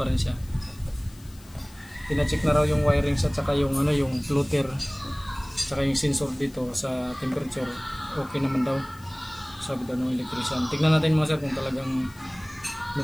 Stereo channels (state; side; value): noise; left; hiss, 24 dB below the sound